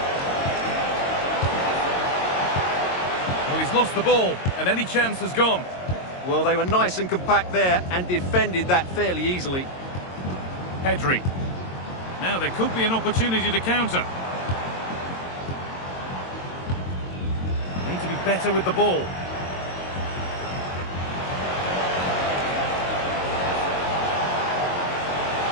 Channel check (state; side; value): late; right; 22 ms